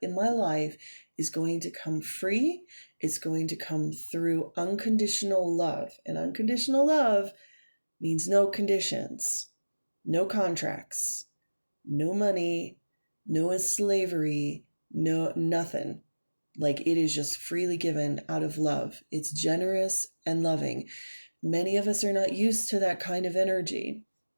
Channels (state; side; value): inverted; both; correlation -1.00